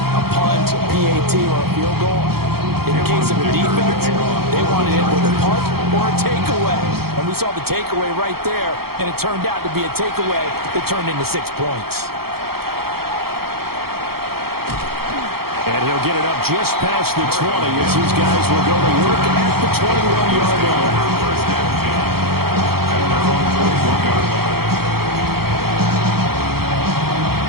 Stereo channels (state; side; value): late; left; 0.95 ms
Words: punt, a PAT, or a field goal. In the case of a defense, they wanted it with a punt or a takeaway. And we saw the takeaway right there, and it turned out to be a takeaway that turned into 6 points. And he'll get it up just past the 20 as these guys will go to work at the 21-yard line.